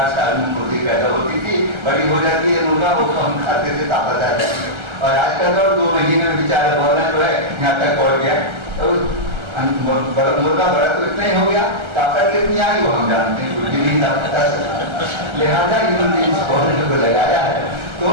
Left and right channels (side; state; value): left; late; 1.3 ms